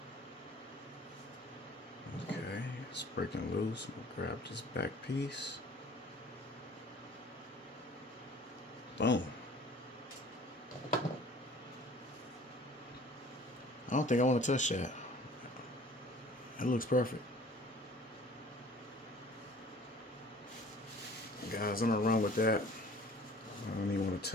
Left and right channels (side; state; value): both; normal; correlation 0.48